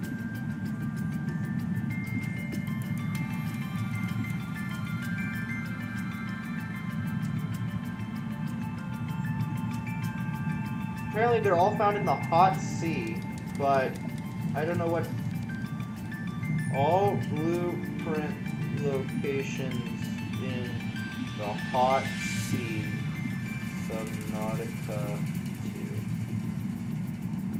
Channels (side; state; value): both; identical; correlation 1.00